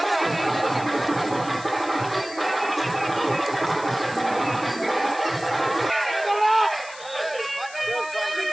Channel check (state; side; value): noise; left; hiss, 17 dB below the sound